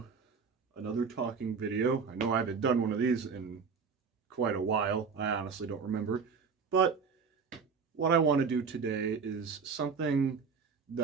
another talking video. I know I haven't done one of these in quite a while. I honestly don't remember. But what I want to do today is something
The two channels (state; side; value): quieter; left; 5.6 dB